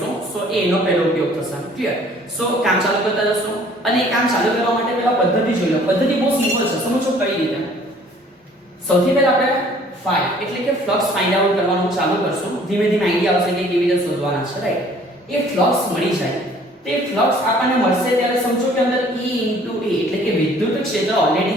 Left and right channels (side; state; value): both; normal; correlation 0.55